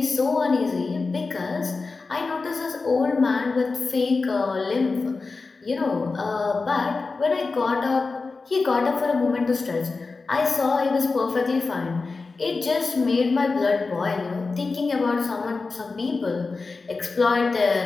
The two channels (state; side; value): quieter; right; 4.1 dB